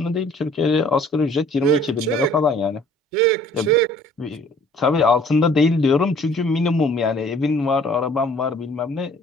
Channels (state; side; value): normal; both; correlation 0.55